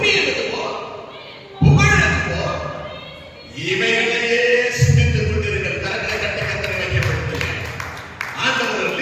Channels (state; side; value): identical; both; correlation 1.00